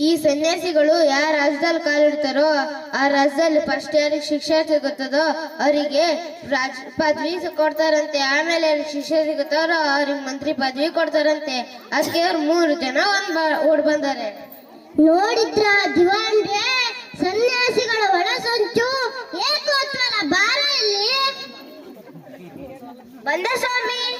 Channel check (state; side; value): identical; both; correlation 1.00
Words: ಈ ಸನ್ಯಾಸಿಗಳು ಯಾವ ರಾಜ್ಯದಲ್ಲಿ ಕಾಲಿಡ್ತಾರೋ ಆ ರಾಜ್ಯದಲ್ಲಿ ಫಸ್ಟ್ ಯಾರಿಗೆ ಶಿಕ್ಷೆ ಸಿಗುತ್ತದೋ ಅವರಿಗೆ ರಾಜ ಪದವಿ ಕೊಡ್ತಾರಂತೆ. ಆಮೇಲೆ ಯಾರಿಗೆ ಶಿಕ್ಷೆ ಸಿಗುತ್ತಾರೋ ಅವ್ರಿಗೆ ಮಂತ್ರಿ ಪದವಿ ಕೊಡ್ತಾರಂತೆ. ಅದಕ್ಕೆ ಅವ್ರು 3 ಜನ ಓಡ್ ಬಂದಾರೆ. ನೋಡಿದ್ರ ದಿವಾನ್ರೆ, ಸನ್ಯಾಸಿಗಳ ಒಳ ಸಂಚು ಏಕೋತ್ವರ ಬಾರ ಇಲ್ಲಿ ಬಂದ ಸ್ವಾಮಿ.